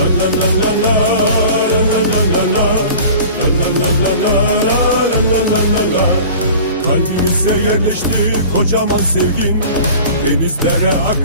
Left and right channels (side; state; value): both; inverted; correlation -0.41